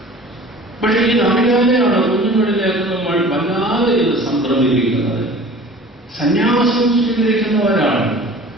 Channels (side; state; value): both; normal; correlation 0.44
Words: പക്ഷെ ഇതറിയാതെയാണ് കുഞ്ഞുങ്ങളിലേക്ക് നമ്മൾ വല്ലാതെ ഇത് സംക്രമിപ്പിക്കുന്നത്. സന്യാസം സ്വീകരിക്കുന്ന ഒരാൾ,